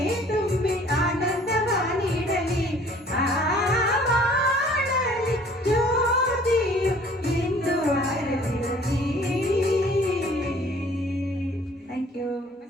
ತುಂಬಿ ಆನಂದವ ನೀಡಲಿ ಬಾಳಲಿ ಜ್ಯೋತಿಯು ಎಂದು ಆರದಿರಲಿ. Thank you.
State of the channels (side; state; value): both; normal; correlation 0.54